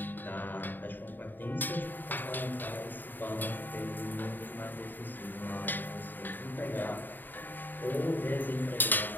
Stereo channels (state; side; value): late; right; 0.090 ms